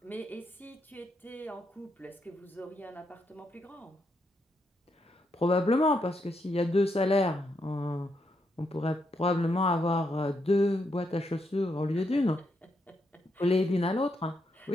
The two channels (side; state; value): both; normal; correlation 0.80